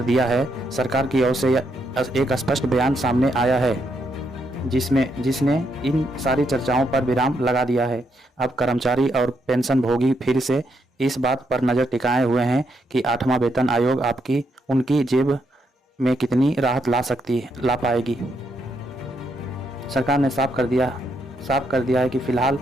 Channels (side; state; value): both; normal; correlation 0.77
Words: दिया है। सरकार की ओर से एक स्पष्ट बयान सामने आया है जिसने इन सारी चर्चाओं पर विराम लगा दिया है। अब कर्मचारी और पेंशन भोगी फिर से इस बात पर नज़र टिकाए हुए हैं कि 8वां वेतन आयोग उनकी जेब में कितनी राहत ला पाएगी। सरकार ने साफ कर दिया है कि फिलहाल